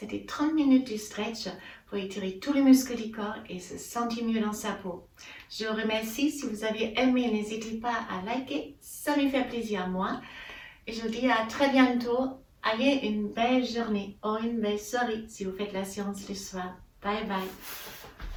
30 minutes de stretch pour étirer tous les muscles du corps et se sentir mieux dans sa peau. Je vous remercie. Si vous avez aimé, n'hésitez pas à liker. Ça me fait plaisir à moi. Et je vous dis à très bientôt. Ayez une belle journée ou une belle soirée si vous faites la séance le soir. Bye bye.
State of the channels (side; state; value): both; identical; correlation 1.00